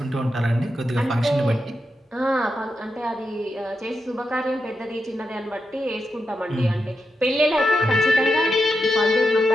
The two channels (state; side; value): normal; both; correlation 0.87